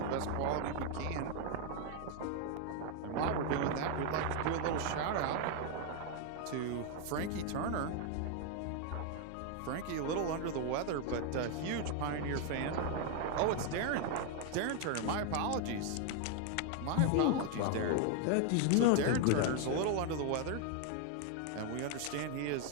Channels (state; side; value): different; both; correlation 0.01